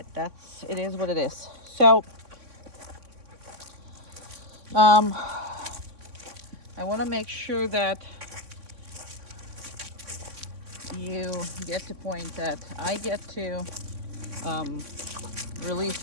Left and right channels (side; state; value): left; late; 3.6 ms